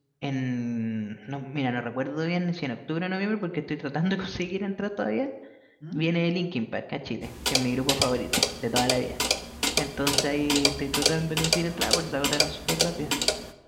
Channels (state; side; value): identical; both; correlation 1.00